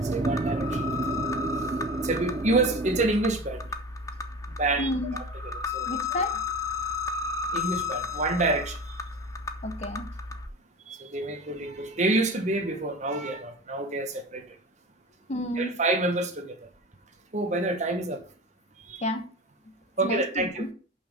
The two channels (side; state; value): both; normal; correlation 0.32